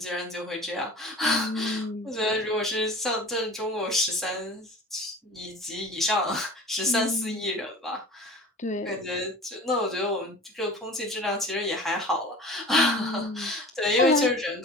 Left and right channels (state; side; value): normal; both; correlation 0.40